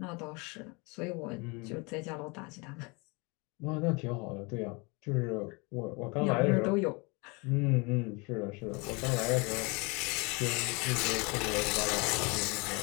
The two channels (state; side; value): quieter; right; 29.1 dB